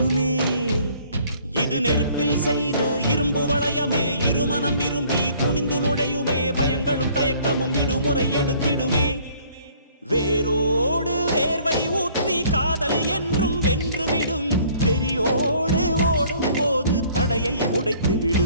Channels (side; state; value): both; inverted; correlation -0.57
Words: இது நெருப்பில் செய்த இரும்பு வளையமே, இருமனம் விரும்பி துணிந்து நுழையுமே. பயங்களும் தயக்கமும் விடுமுறை எடுத்திடுமே. வேரோடு வேர்வை ஊற்றி காதல் என்றும் வென்றுவிடும், பெரியோடு ஓடும் போது தடையை